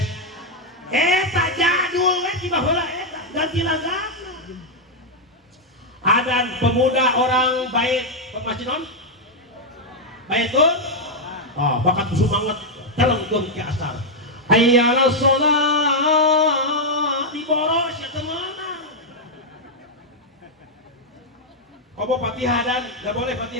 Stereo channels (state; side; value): normal; both; correlation -0.01